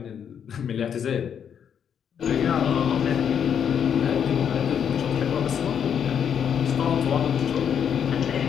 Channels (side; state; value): right; quieter; 8.1 dB